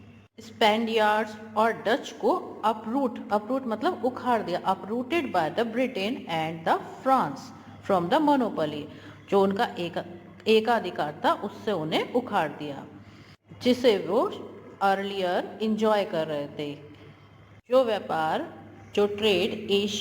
स्पेनियार्ड्स और डच को अपरूट मतलब उखाड़ दिया, uprooted by the Britain and the France from the monopoly, जो उनका एकाधिकार था उससे उन्हें उखाड़ दिया, जिसे वो अर्लियर इंजॉय कर रहे थे। जो व्यापार, जो ट्रेड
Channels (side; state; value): both; identical; correlation 1.00